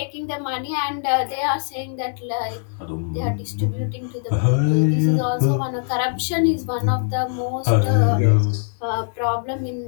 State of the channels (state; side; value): silent; right; digital silence